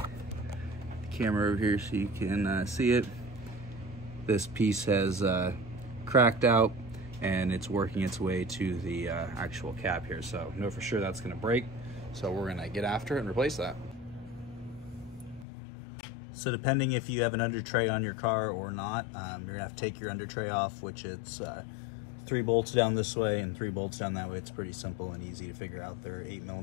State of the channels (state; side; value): drops out; right; at 15.5 s